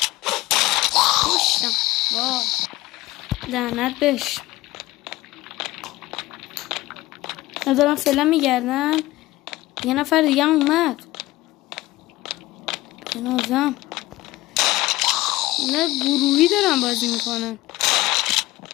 خوشم. وای لعنت بهش. ندارم فعلا میگردن. یه نفر دیگه هم اومد. بنازم نه گروهی دارن بازی میکنن.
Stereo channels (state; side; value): quieter; right; 18.3 dB